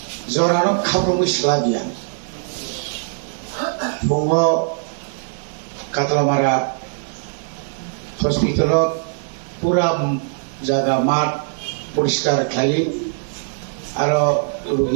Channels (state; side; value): silent; left; digital silence